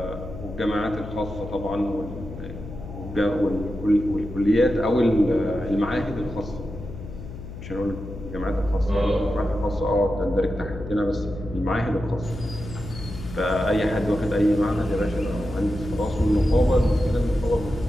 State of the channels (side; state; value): left; noise; hum, 11 dB below the sound